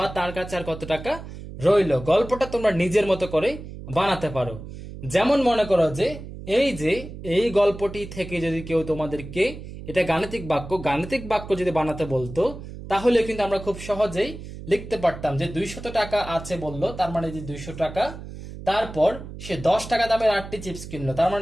তার কাছে আর কত টাকা রইলো। গল্পটা তোমরা নিজের মতো করে বানাতে পারো। যেমন মনে করো যে এই গল্পটি থেকে যদি কেউ তোমাদেরকে, এটা গাণিতিক বাক্য, গাণিতিক বাক্য যদি বানাতে বলতো, তাহলে কিন্তু আমরা খুব সহজেই লিখতে পারতাম যে 200 টাকা আছে বললো, তার মানে যে 200 টাকা, তারপর সে 10 টাকা দামের 8টি চিপস কিনলো, তার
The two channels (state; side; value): noise; right; hum, 12 dB below the sound